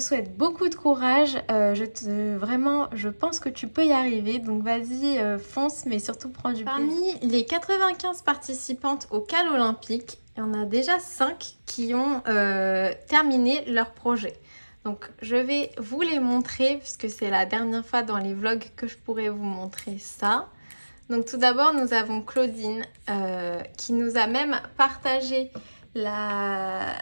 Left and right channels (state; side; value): inverted; both; correlation -1.00